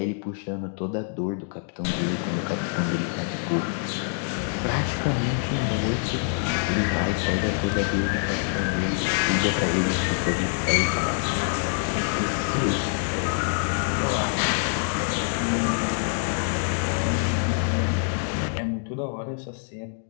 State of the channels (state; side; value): silent; right; 61 dB below the other